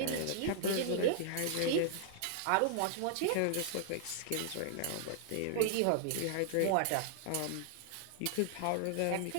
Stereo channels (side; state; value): both; different; correlation -0.01